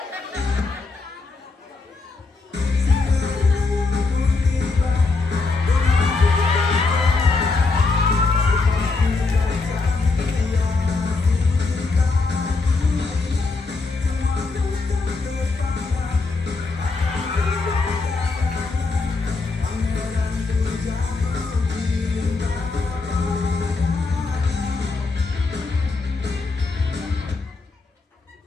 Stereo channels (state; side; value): quieter; right; 3.8 dB